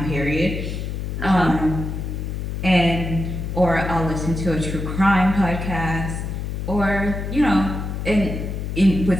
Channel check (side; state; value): left; noise; hum, 4 dB below the sound